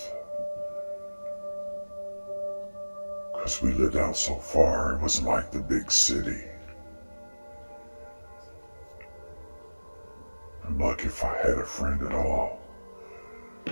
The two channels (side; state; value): both; inverted; correlation -1.00